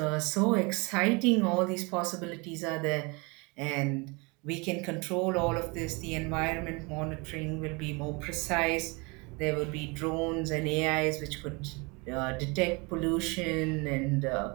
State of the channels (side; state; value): left; quieter; 28.2 dB